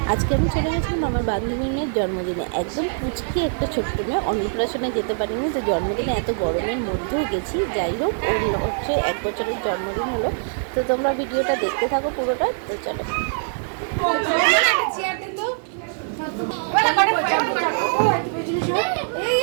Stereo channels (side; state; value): left; silent; digital silence